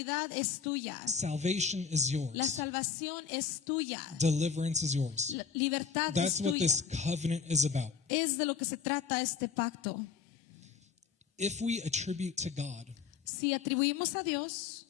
es tuya, Salvation is la yours. salvación es tuya, Deliverance is yours. la libertad That's es what tuya. this covenant is about. Es de lo que se trata este pacto. If we attribute to God Si atribuimos a Dios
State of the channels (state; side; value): quieter; right; 6.2 dB